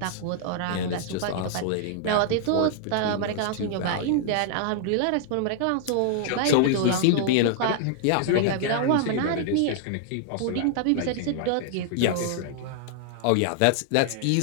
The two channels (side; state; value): both; different; correlation -0.01